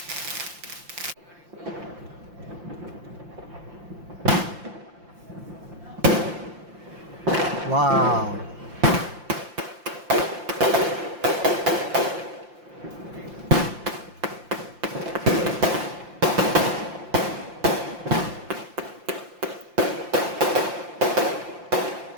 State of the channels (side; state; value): left; late; 5.7 ms